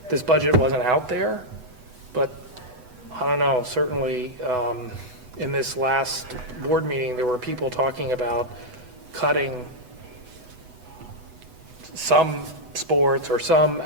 this budget wasn't out there, but I don't know, certainly in this last board meeting, there were people talking about cutting some sports or some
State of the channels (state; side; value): late; left; 8.0 ms